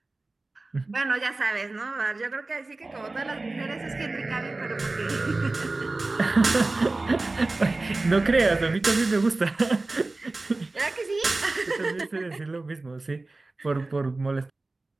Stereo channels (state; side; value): quieter; left; 3.2 dB